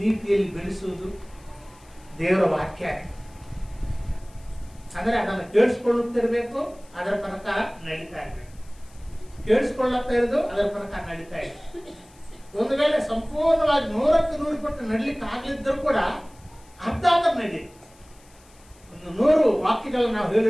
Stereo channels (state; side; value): noise; left; hiss, 28 dB below the sound